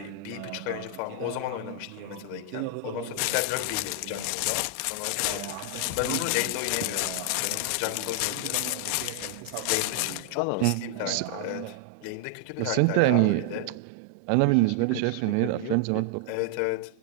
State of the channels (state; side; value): different; both; correlation 0.00